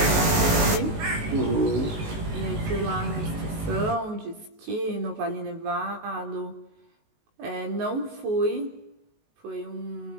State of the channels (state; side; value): late; left; 19 ms